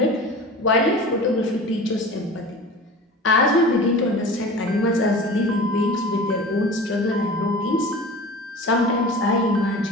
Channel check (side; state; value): both; normal; correlation 0.37